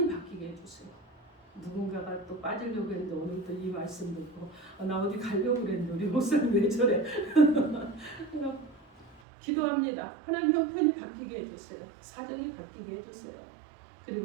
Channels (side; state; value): left; drops out; at 9.2 s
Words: 바뀌게 해주세요. 누군가가 또 빠지려고 했는데 오늘 또 이 말씀 듣고 나 어디 가려고 그랬는데 우리 목사님 왜 저래? 기도합니다. 하나님 형편이 바뀌게 해주세요. 사정이 바뀌게 해주세요.